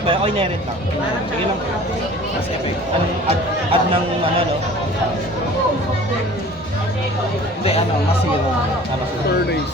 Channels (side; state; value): both; normal; correlation 0.46